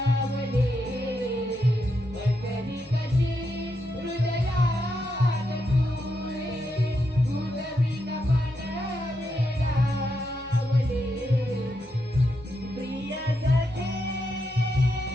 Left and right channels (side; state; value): both; normal; correlation 0.83